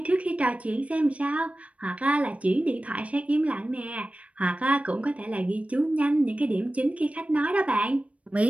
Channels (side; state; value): left; late; 0.065 ms